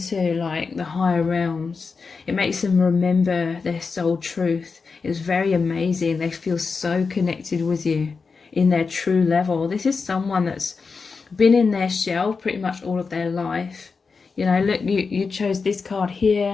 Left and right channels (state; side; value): quieter; right; 4.8 dB